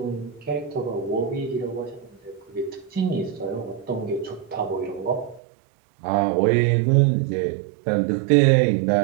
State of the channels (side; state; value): left; drops out; at 5.4 s